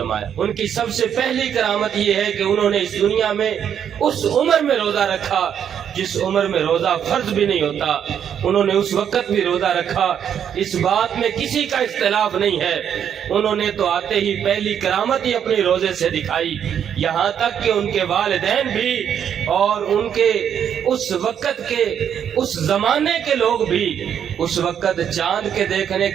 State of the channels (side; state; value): left; quieter; 8.8 dB